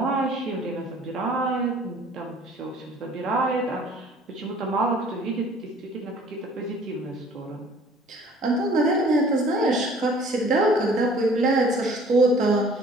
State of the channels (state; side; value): normal; both; correlation 0.52